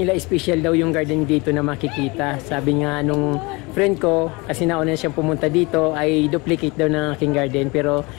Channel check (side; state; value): right; quieter; 25.8 dB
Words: special daw yung garden dito na makikita. Sabi nga nung friend ko, kasi nauna siyang pumunta dito, ay duplicate daw ng aking garden pero